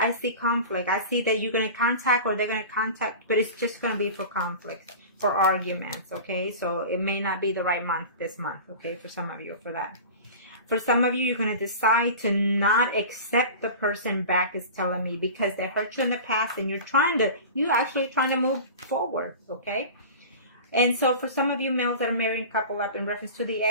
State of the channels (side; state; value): both; inverted; correlation -0.35